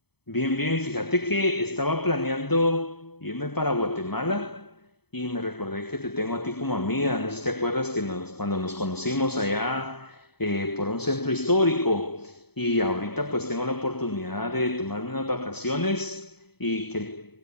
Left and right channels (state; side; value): late; right; 0.97 ms